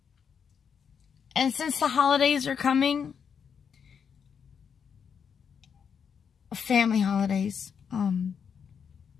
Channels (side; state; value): right; quieter; 7.0 dB